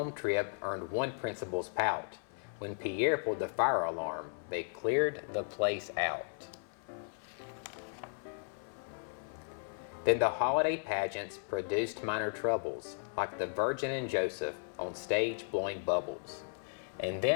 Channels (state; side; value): silent; right; 54 dB below the other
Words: trip earned one principal's pout. When Pierre pulled the fire alarm, they cleared the place out. Then the holiday pageants produced minor troubles, like the Virgin and Joseph on stage blowing bubbles. And